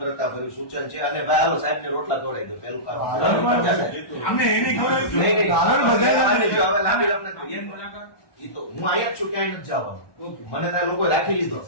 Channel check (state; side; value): late; right; 1.2 ms